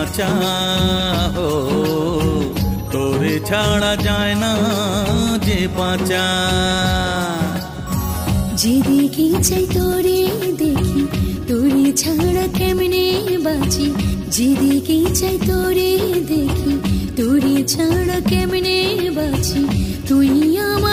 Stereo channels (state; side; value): identical; both; correlation 1.00